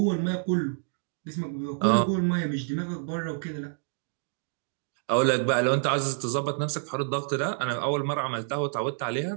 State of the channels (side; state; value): left; silent; digital silence